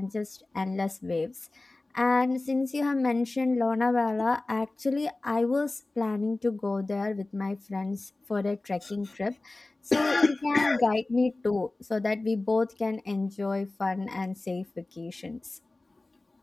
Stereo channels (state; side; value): quieter; right; 3.0 dB